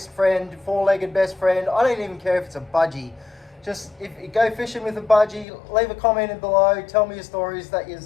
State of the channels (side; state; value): right; drops out; at 5.5 s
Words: friend, four-legged best friend. I don't even care if it's a budgie. Just if you go fishing with a budgie, leave a comment in below, tell me your stories that you